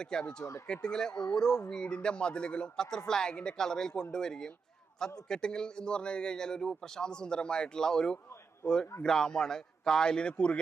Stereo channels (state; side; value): quieter; left; 5.2 dB